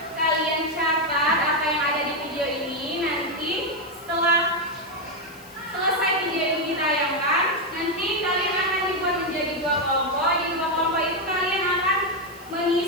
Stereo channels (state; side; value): noise; left; hiss, 23 dB below the sound